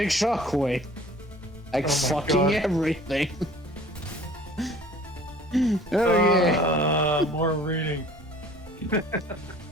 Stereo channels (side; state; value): both; normal; correlation 0.49